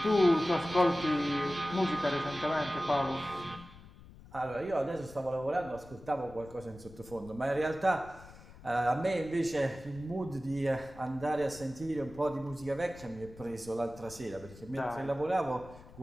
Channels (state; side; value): noise; left; rumble, 19 dB below the sound